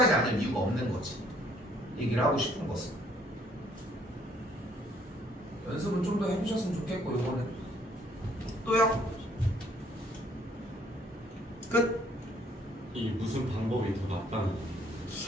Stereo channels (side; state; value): both; normal; correlation 0.63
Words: 않을 이유가 없는 거지. 얘기를 하고 싶은 것은. 연습은 좀 더 해주셨으면 좋겠고 요거는. 또요? 끝? 이 무슨 방법이 더 낫다는 거?